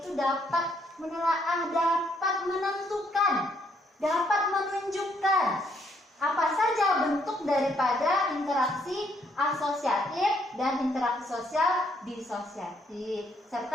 dapat menelaah, dapat menentukan, dapat menunjukkan apa saja bentuk daripada interaksi asosiatif dan interaksi sosial disosiatif.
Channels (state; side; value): normal; both; correlation 0.70